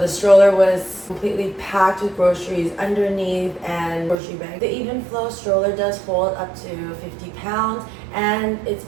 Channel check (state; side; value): drops out; left; at 4.2 s